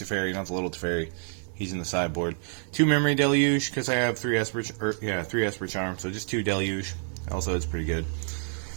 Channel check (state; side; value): silent; left; 59 dB below the other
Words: not the little Teferi. He's in the sideboard. 2 Memory Deluge, because I have 3 Esper Charm, so just 2 Deluge. Also, it's pretty good.